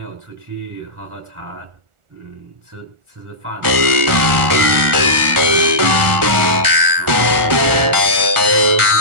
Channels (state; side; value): late; left; 1.4 ms